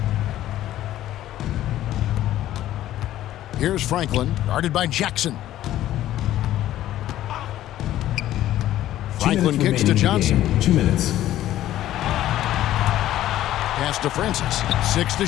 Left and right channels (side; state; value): right; quieter; 13.4 dB